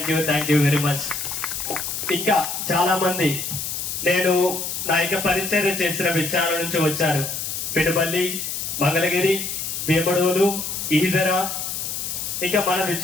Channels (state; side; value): noise; left; hiss, 4 dB below the sound